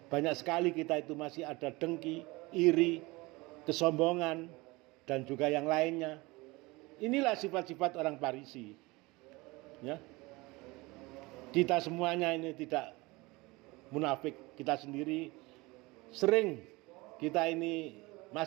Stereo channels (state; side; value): quieter; left; 23.0 dB